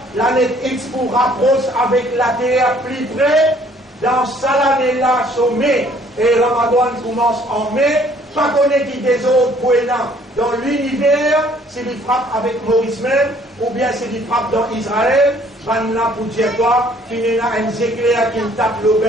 l'année X pour rapproche avec la terre plus près. Dans ça l'année-là, c'est mai, et Ramadan commence en mai, pas connaître qui des autres points dans l'univers, s'il frappe avec Maurice même, ou bien s'il frappe dans Israël, van là pour dire quoi, qu'il y a un éclair qui tape le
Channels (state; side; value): normal; both; correlation 0.59